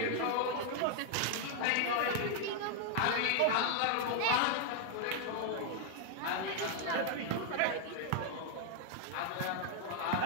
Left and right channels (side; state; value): both; different; correlation 0.00